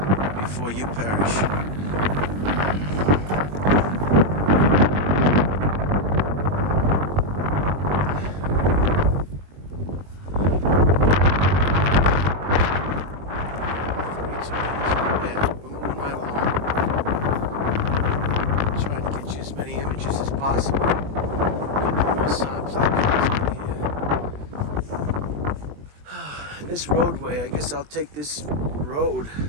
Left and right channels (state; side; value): late; left; 20 ms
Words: before you perish. Possible. This roadway, I guess I'll take this road